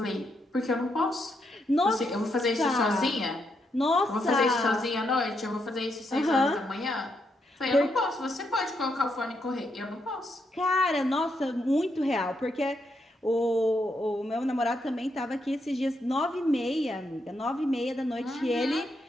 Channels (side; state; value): both; normal; correlation 0.79